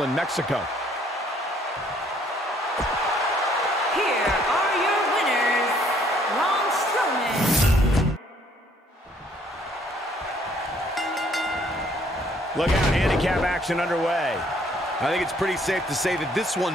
in Mexico. Here are your winners, Braun Strowman. Look out, handicap action underway. I think it's pretty safe to say that this one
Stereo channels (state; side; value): normal; both; correlation 0.64